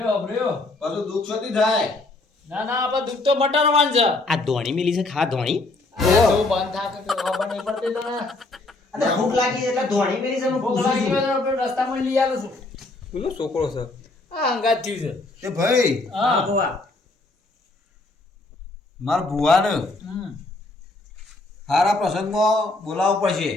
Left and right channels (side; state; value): right; quieter; 3.1 dB